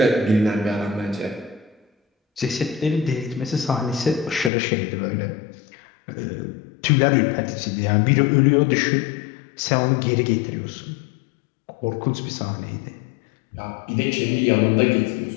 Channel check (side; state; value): right; drops out; at 4.5 s